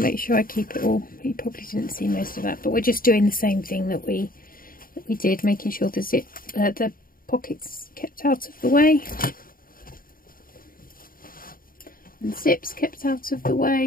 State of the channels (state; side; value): late; right; 0.41 ms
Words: sure I keep it all. You probably didn't see most of that, but we're just doing the same thing that we did, making sure the zip, the pockets kept out of the way, and zips kept out of the